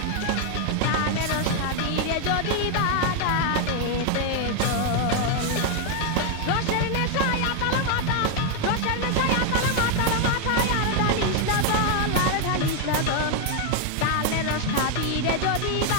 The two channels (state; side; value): different; both; correlation 0.01